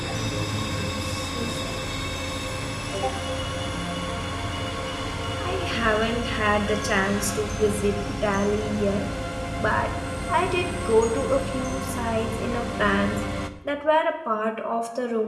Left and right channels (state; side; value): identical; both; correlation 1.00